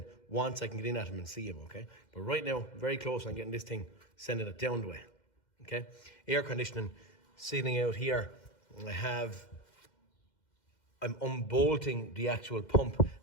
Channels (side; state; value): right; late; 2.1 ms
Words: once I can get in at them and see them, okay? But right now, very close on getting this thing, sending it down the way, okay? Air conditioning sitting out here. I'm unbolting the actual pump